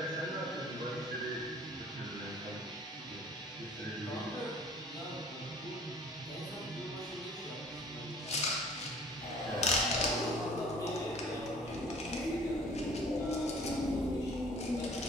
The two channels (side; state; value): both; normal; correlation 0.51